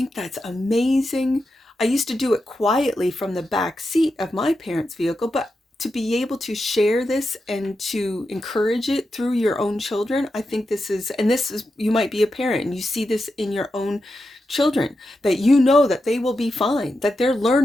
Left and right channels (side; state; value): both; normal; correlation 0.88